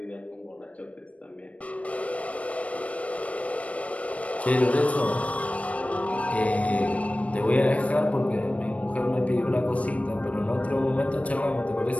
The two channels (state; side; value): late; right; 0.065 ms